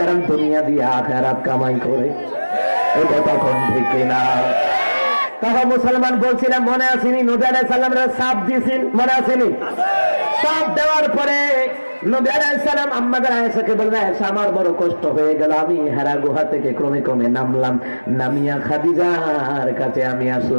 দুনিয়া দিয়ে আখিরাত কামাই করে। এই কথা কোন ঠিক না? তখন মুসলমান বলছিলাম, মনে আসেনি নবী আলাইহিস সালামের সাপ দিয়েছেন, মনে আসেনি? সাপ দেওয়ার পরে নবী আলাইহিস সালাম আম্মাদের আয়েশাকে বললেন, আয়েশা আমার বড় কষ্ট হয়ে গেল, আমি হেরা গুহা থেকে ক্রমে ক্রমে নামলাম, নামিয়া খাদিজার কাছে আমি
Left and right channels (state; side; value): inverted; both; correlation -1.00